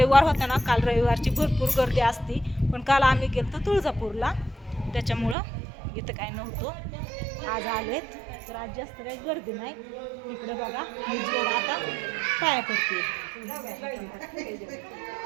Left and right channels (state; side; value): drops out; left; at 5.4 s